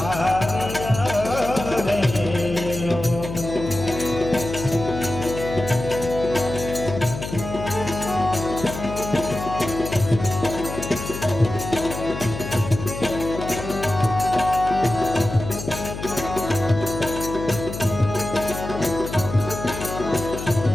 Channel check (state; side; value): noise; left; hum, 8 dB below the sound